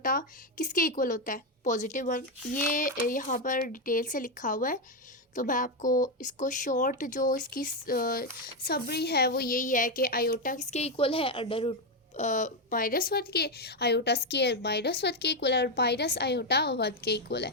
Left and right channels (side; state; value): both; normal; correlation 0.06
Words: किसके इक्वल होता है? +1। ये यहाँ पर डिटेल से लिखा हुआ है, तो मैं आपको इसको शॉर्ट जो इसकी समरी है वो यही है कि आयोटा किसके इक्वल है? अंडर रूट -1 के, आयोटा स्केयर -1 के इक्वल है और माइनस आयोटा 1 के इक्वल है।